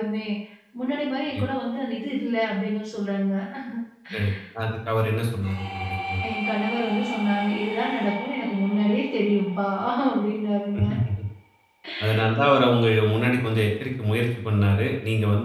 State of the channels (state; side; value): identical; both; correlation 1.00